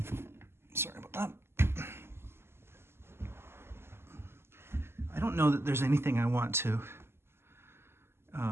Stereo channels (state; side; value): late; left; 0.12 ms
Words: Sorry about that. I don't know that there's anything I want to